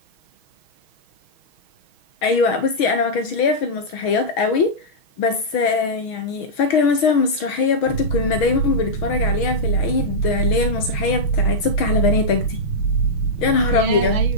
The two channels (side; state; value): right; late; 6.3 ms